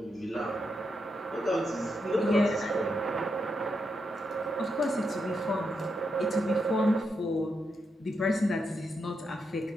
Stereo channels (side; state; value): both; normal; correlation 0.83